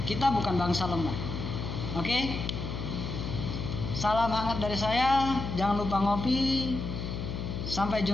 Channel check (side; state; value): left; noise; hum, 5 dB below the sound